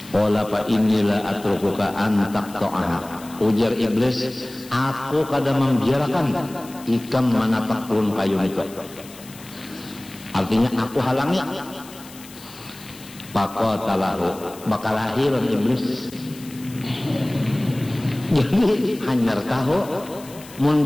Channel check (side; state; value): left; noise; hiss, 19 dB below the sound